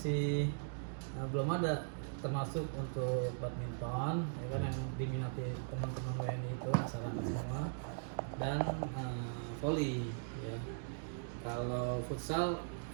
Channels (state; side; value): silent; left; digital silence